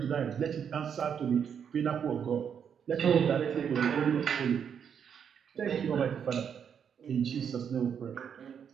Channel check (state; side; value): quieter; left; 7.7 dB